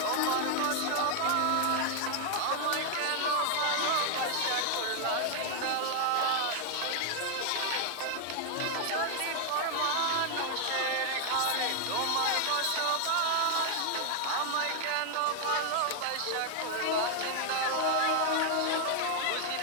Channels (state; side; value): different; both; correlation 0.00